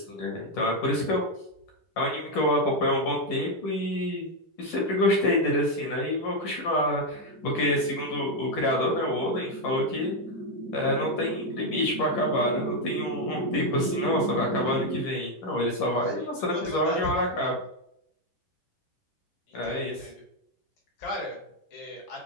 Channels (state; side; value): late; right; 10 ms